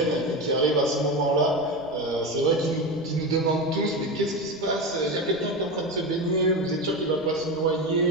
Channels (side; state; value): right; noise; rumble, 28 dB below the sound